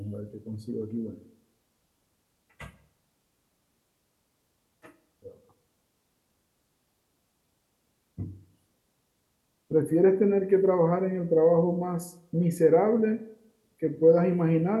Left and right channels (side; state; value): both; identical; correlation 1.00